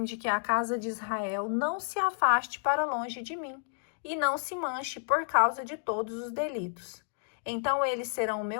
de que a casa de Israel não se afaste para longe de mim e não se manche por causa de todos os delitos. Então eles serão o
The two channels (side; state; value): right; silent; digital silence